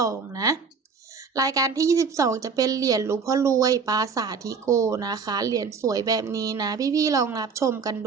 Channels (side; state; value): left; quieter; 5.4 dB